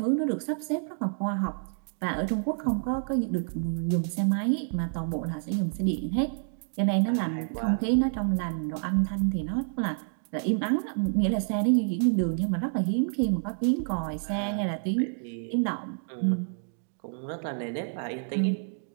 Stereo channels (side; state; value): left; silent; digital silence